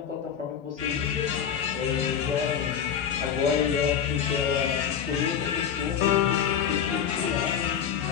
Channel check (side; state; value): right; quieter; 8.2 dB